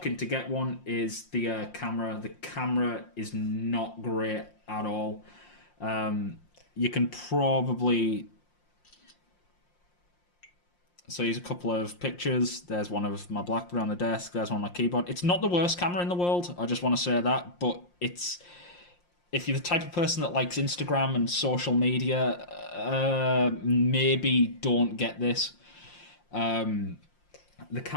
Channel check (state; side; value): late; right; 5.7 ms